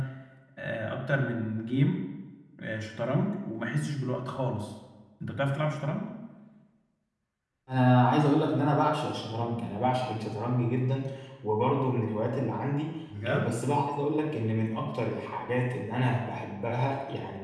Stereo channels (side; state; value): both; identical; correlation 1.00